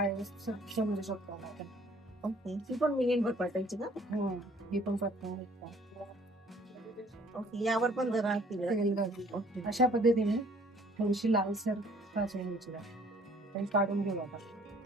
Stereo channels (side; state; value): both; normal; correlation 0.58